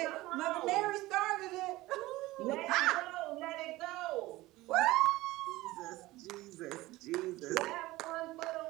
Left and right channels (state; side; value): quieter; left; 18.6 dB